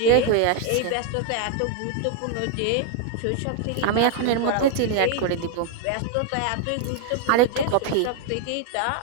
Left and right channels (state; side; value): different; both; correlation 0.00